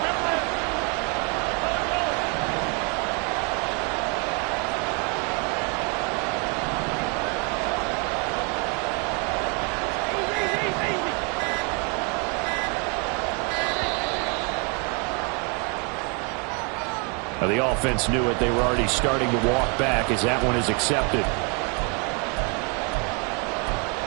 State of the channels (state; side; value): quieter; left; 34.3 dB